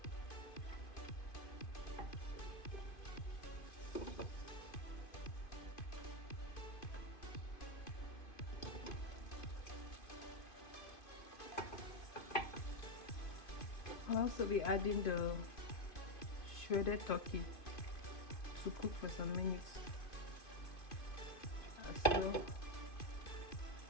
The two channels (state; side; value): late; right; 2.5 ms